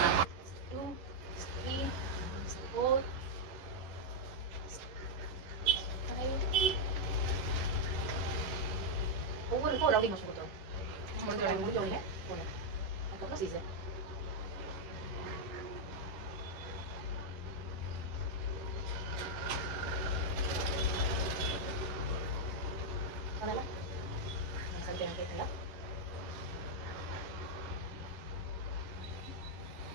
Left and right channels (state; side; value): late; left; 11 ms